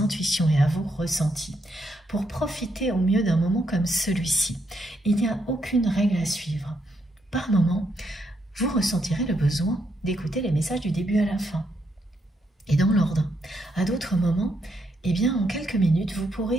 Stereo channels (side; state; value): both; normal; correlation 0.78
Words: intuitions et à vos ressentis pour profiter au mieux d'un moment comme celui-ci. Il n'y a aucune règle à suivre. Par moment, vous ressentirez le besoin d'écouter les messages du début à la fin et dans l'ordre. À d'autres moments, eh bien, en quelques minutes, vous